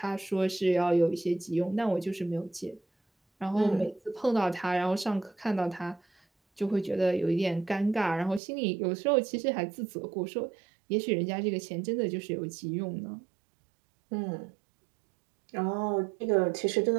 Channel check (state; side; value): drops out; left; at 8.4 s